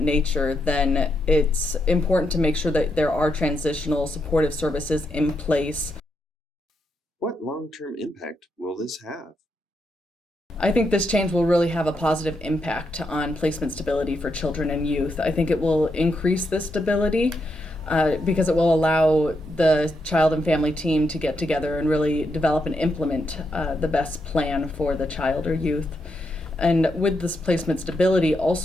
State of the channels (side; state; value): both; normal; correlation 0.82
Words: then it's important to make sure that there are transitional supportive services in place. What long-term impact will this have? I think this change will really have a positive impact on placement stability for children and youth. I think it will increase the stability because it will allow the child and family team to get together and really develop and implement the best plan for the child or youth. And with this placement stability